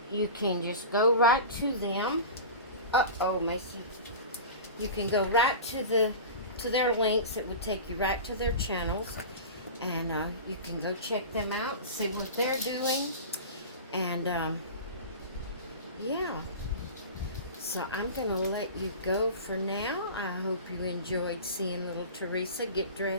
you can just go right to them. Uh-oh, Macy. You can go right to their links. It would take you right to their channels. And you can go check them out, see what they're doing. And, yeah. So I'm going to let you go for now. I hope you enjoyed seeing little Theresa get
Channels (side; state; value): both; inverted; correlation -0.32